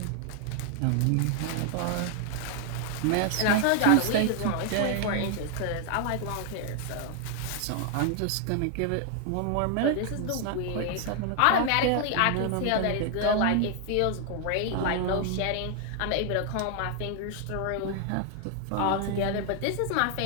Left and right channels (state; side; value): different; both; correlation 0.00